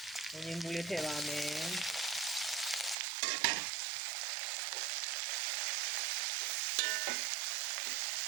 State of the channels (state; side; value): drops out; left; at 3.0 s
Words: ငင်းဘူးလေးထည့်ပါမယ်